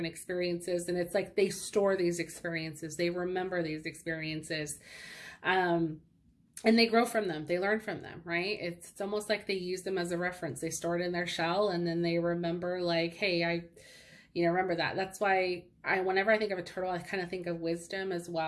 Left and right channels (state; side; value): identical; both; correlation 1.00